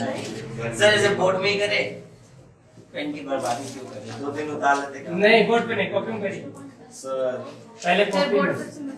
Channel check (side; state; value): both; identical; correlation 1.00